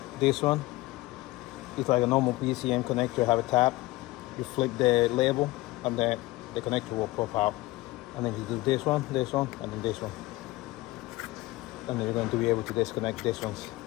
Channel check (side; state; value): right; quieter; 19.5 dB